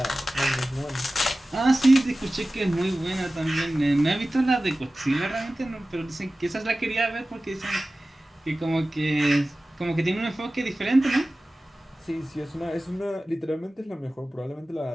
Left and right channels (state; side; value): normal; both; correlation 0.96